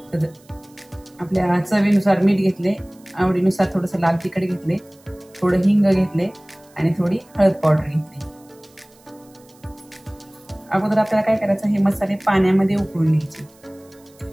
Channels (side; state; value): right; noise; hiss, 29 dB below the sound